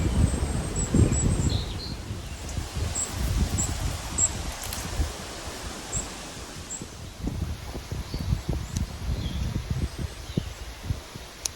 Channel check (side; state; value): both; identical; correlation 1.00